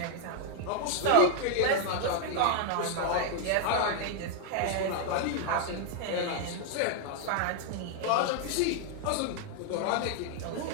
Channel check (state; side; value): different; both; correlation 0.00